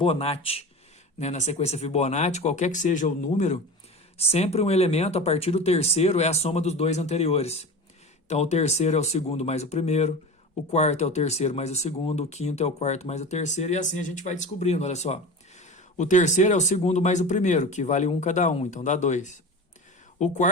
Né? Na sequência Fibonacci, qualquer que seja o número, sempre um elemento a partir do terceiro é a soma dos dois anteriores. Então, o terceiro é o segundo mais o primeiro, o quarto é o terceiro mais o segundo, o quinto é o quarto mais o terceiro, e assim a gente vai descobrindo, olha só. O terceiro é o segundo mais o primeiro, que vale 1 cada um, então dá 2. O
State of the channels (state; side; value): normal; both; correlation 0.31